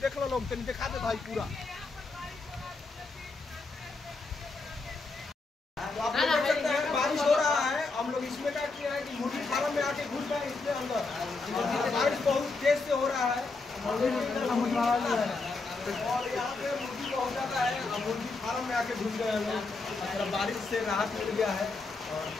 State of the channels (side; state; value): right; quieter; 3.8 dB